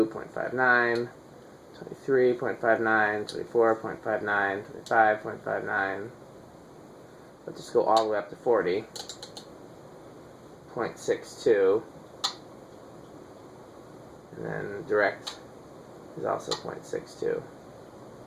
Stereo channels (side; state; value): both; identical; correlation 1.00